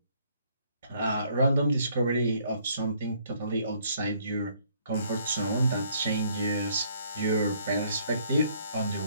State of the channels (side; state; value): both; inverted; correlation -0.64